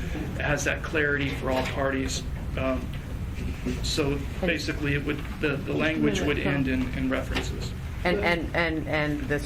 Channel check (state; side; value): identical; both; correlation 1.00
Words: has that clarity for all parties. So basically, it would the language would end in references. And the